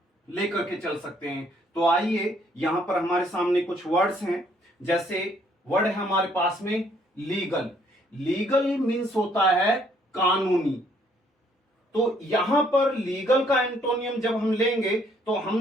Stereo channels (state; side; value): normal; both; correlation 0.66